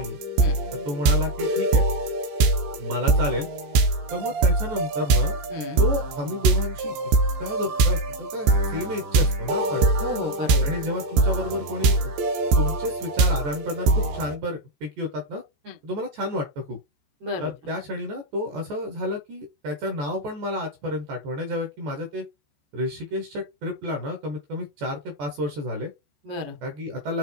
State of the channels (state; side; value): late; left; 14 ms